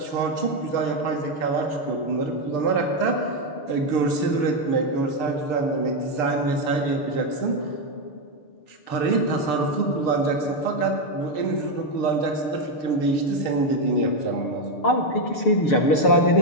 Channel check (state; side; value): late; right; 6.7 ms